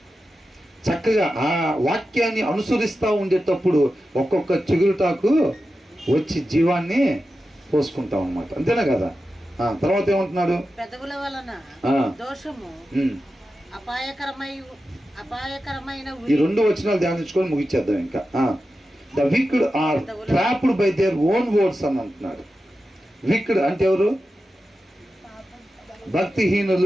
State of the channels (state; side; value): normal; both; correlation 0.92